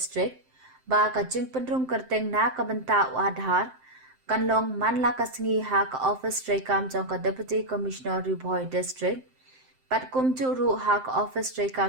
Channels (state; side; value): late; left; 7.7 ms